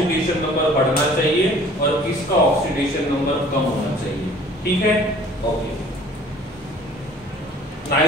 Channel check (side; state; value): both; normal; correlation 0.51